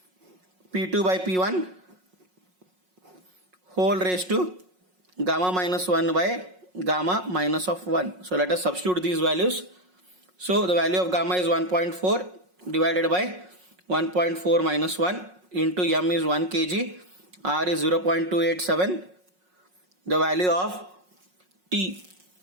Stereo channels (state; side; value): late; left; 5.5 ms